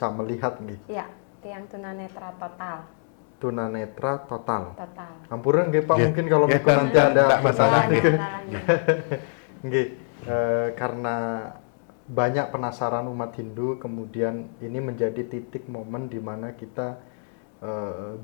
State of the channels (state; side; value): silent; right; 61 dB below the other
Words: melihat nggih? Iya, tiang tunanetra total. Tunanetra total. Total. Ampura nggih Pak, mungkin kalau Miko nanti ada bahasanya. Nggih, karena banyak penasaran umat Hindu, kemudian ini menjadi titik momen di mana kita